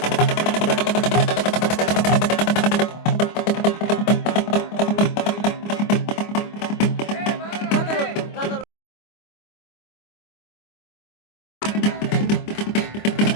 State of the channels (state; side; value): late; right; 25 ms